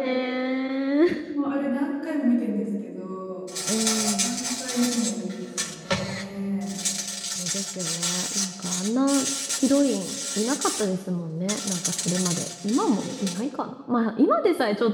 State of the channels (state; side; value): identical; both; correlation 1.00